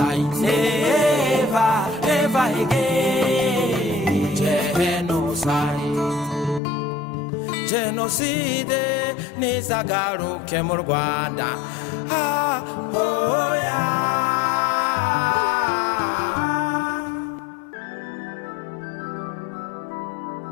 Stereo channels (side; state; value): right; drops out; at 6.6 s